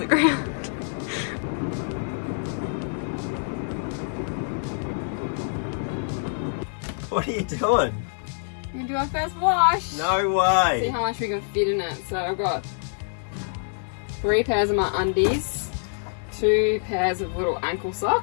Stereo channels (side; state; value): right; silent; digital silence